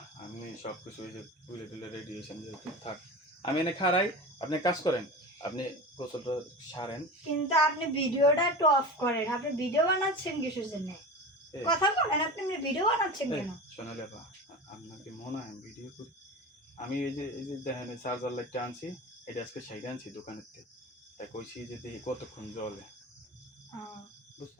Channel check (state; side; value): normal; both; correlation 0.30